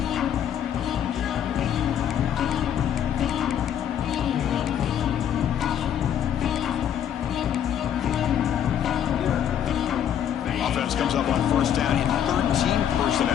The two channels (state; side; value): quieter; right; 9.6 dB